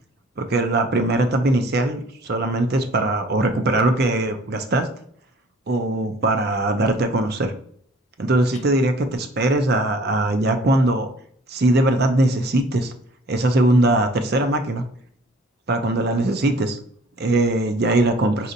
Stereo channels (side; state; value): both; normal; correlation 0.52